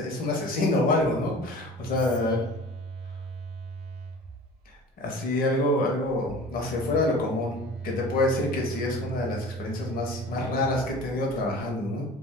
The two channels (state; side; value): normal; both; correlation 0.41